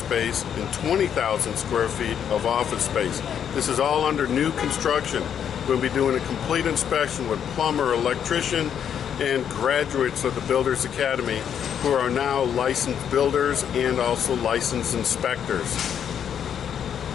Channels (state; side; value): quieter; right; 8.6 dB